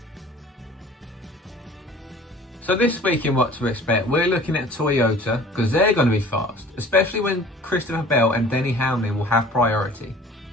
So this week in What to Expect, we're looking at Toyota because they're going to be fast, especially when Christopher Bell and Denny Hamlin will have priority.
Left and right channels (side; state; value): both; normal; correlation 0.48